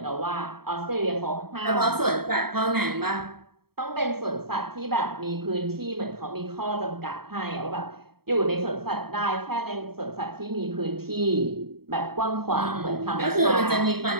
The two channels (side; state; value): left; late; 0.95 ms